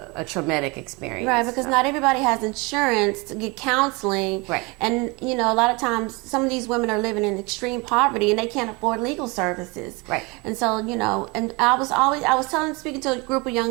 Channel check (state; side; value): quieter; left; 27.0 dB